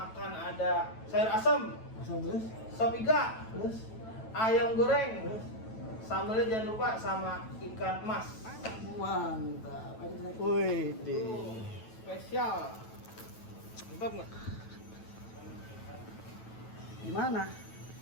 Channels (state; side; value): late; right; 9.1 ms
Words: ada sayur asam, Asal terus? sop iga, Terus? ayam goreng, sambelnya jangan lupa sama ikan mas. Mantap. Wih, deh. Spesial. Mantap nggak? Gimana?